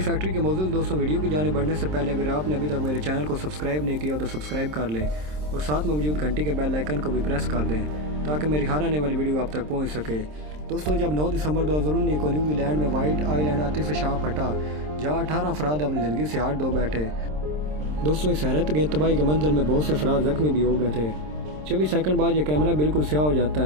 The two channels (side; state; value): left; late; 27 ms